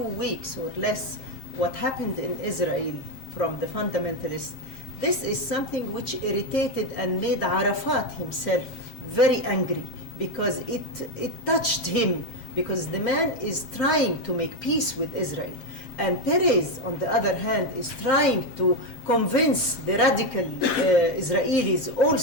weeks or less, what happened in Israel from the fundamentalists, this is something which irritated and made Arafat himself very angry, because it touched him, because the man is trying to make peace with Israel. And Perez, on the other hand, is trying to convince the radical Israelis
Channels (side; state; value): right; late; 7.5 ms